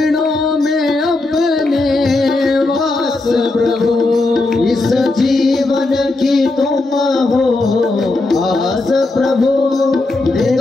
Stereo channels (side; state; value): right; quieter; 3.1 dB